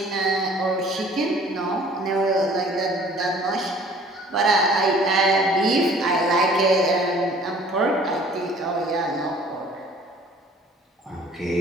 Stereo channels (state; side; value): normal; both; correlation 0.52